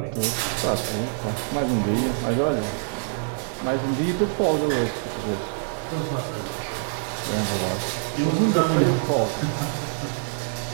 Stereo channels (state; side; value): silent; left; digital silence